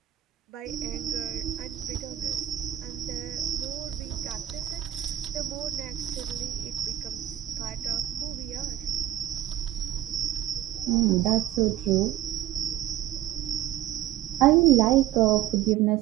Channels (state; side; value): quieter; left; 13.0 dB